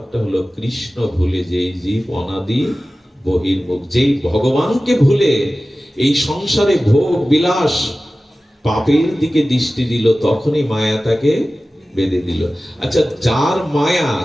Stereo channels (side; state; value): both; normal; correlation 0.96